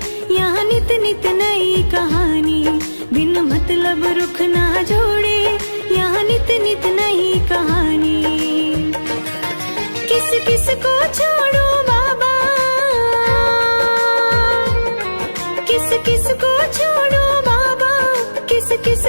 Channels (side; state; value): both; inverted; correlation -1.00